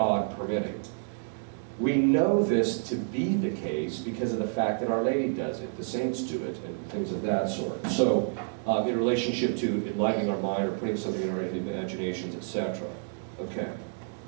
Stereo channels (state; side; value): silent; left; digital silence